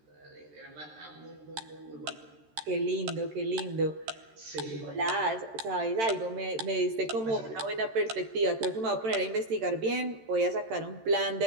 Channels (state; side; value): late; left; 13 ms